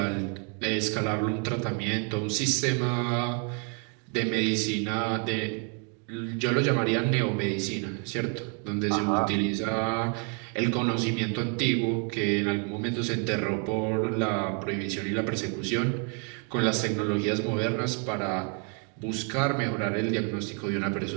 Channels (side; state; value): left; quieter; 37.6 dB